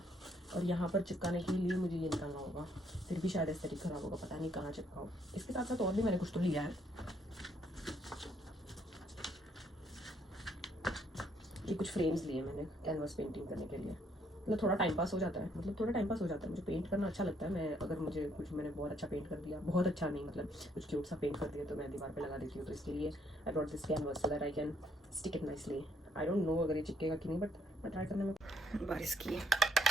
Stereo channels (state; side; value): normal; both; correlation 0.69